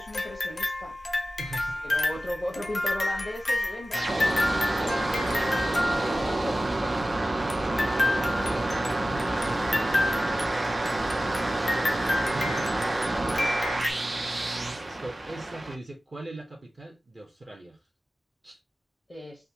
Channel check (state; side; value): normal; both; correlation 0.95